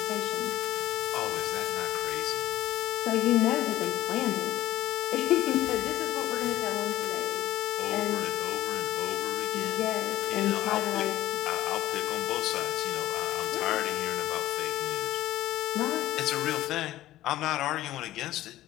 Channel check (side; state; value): right; quieter; 14.9 dB